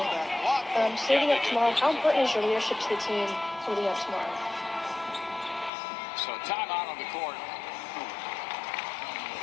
leading up tomorrow, how important is your leadership to the team leading up tomorrow? So timeout on the court.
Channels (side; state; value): right; drops out; at 5.7 s